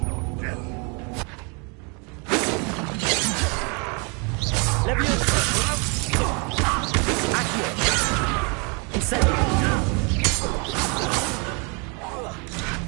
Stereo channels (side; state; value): left; quieter; 33.2 dB